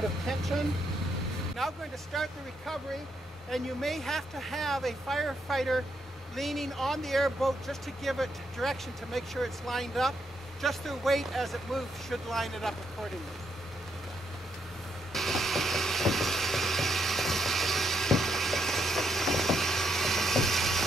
of tension. Now we're going to start the recovery, and you may have to have a firefighter leaning on the airboat just to give it direction to make sure it's lined up. Just their weight as it moves should line it up accordingly.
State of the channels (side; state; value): both; normal; correlation 0.77